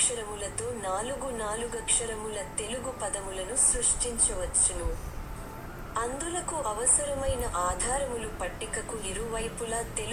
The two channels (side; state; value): both; identical; correlation 1.00